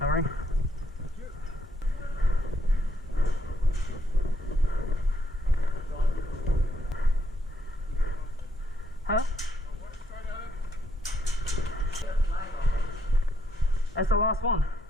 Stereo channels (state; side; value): normal; both; correlation 0.74